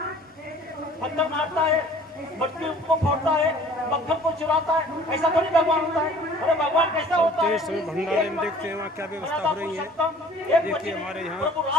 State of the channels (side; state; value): both; normal; correlation 0.51